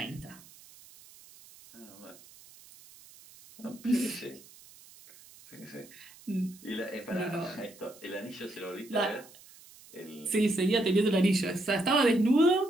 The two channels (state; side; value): noise; right; hiss, 22 dB below the sound